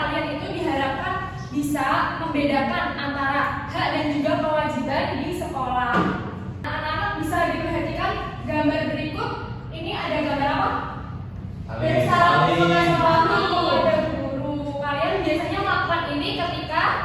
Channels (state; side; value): identical; both; correlation 1.00